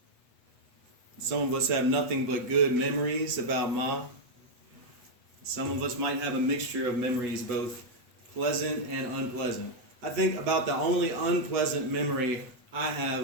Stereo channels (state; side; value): late; left; 8.2 ms